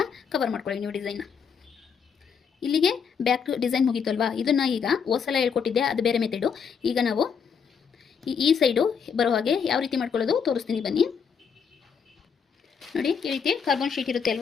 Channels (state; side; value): quieter; right; 6.6 dB